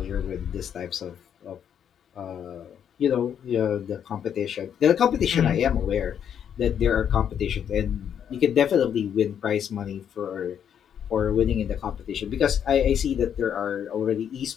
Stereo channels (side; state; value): right; quieter; 8.7 dB